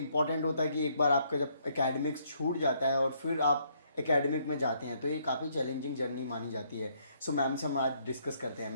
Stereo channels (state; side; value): inverted; both; correlation -0.69